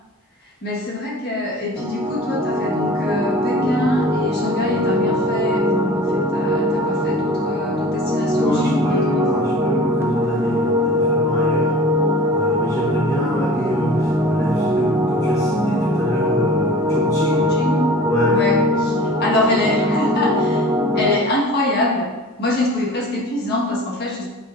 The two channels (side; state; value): both; normal; correlation 0.41